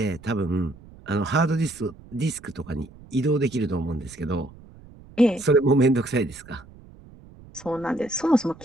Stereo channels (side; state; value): right; noise; rumble, 21 dB below the sound